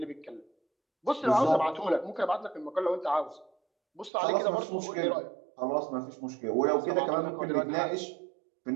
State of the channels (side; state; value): left; drops out; at 4.1 s